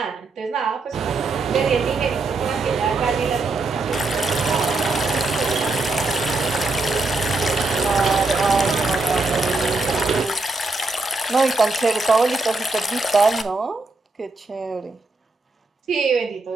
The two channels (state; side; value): quieter; left; 3.4 dB